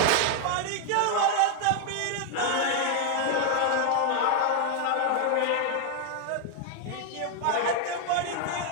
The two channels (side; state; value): both; different; correlation 0.01